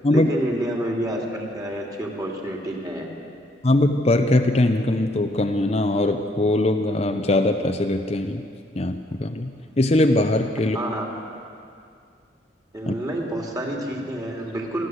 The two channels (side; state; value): both; normal; correlation 0.69